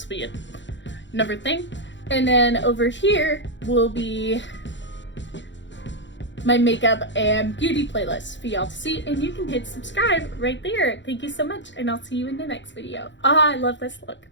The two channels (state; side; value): late; right; 0.53 ms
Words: will be another thing. And then over here will be my makeup and beauty playlist for y'all to see, and you can hit subscribe right there. Thank you so much, and I'll see you in the next video. Oh, I love this look.